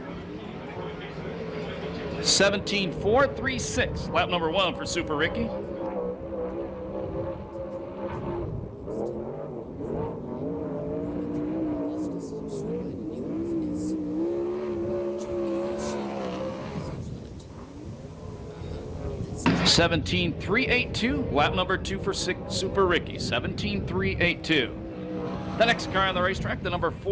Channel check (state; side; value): identical; both; correlation 1.00